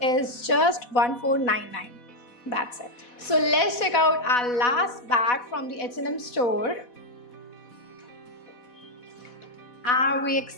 is just 1499. That's it. So let's check out our last bag from the H&M store. Are we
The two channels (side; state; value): right; late; 4.1 ms